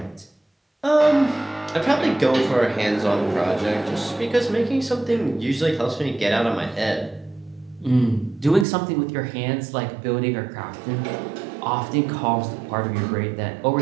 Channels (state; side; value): drops out; left; at 8.7 s